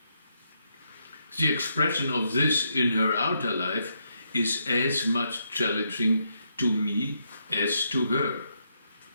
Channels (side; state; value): both; inverted; correlation -0.79